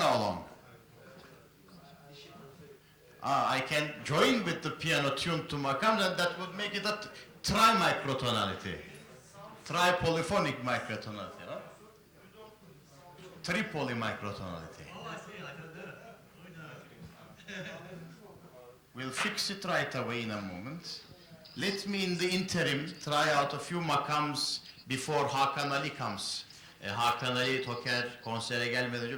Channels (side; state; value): both; identical; correlation 1.00